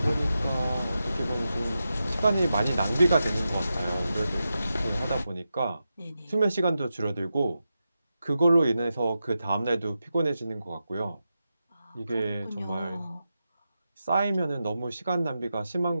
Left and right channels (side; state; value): both; inverted; correlation -0.90